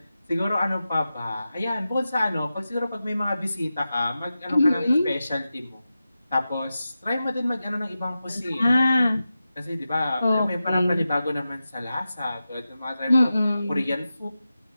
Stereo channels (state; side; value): inverted; both; correlation -0.92